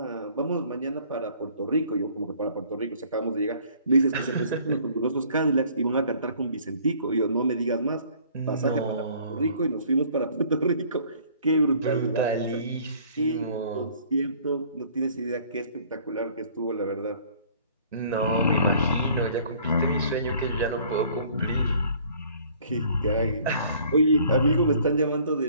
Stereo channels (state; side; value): inverted; both; correlation -0.56